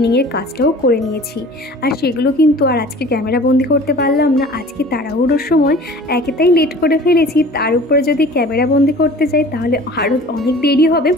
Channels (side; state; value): both; normal; correlation 0.44